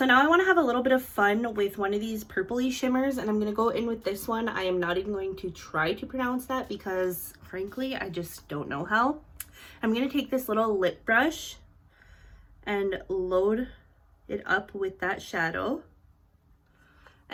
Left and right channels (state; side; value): identical; both; correlation 1.00